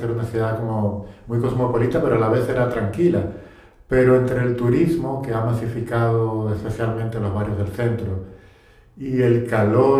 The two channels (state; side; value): identical; both; correlation 1.00